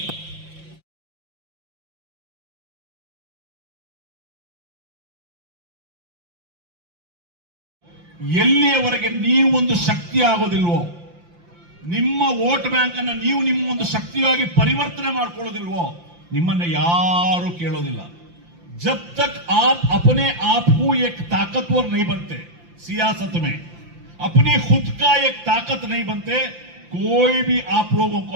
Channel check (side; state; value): left; late; 5.8 ms